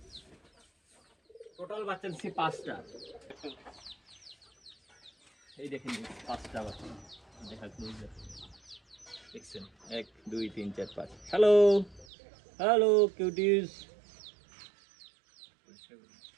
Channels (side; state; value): left; drops out; at 12.1 s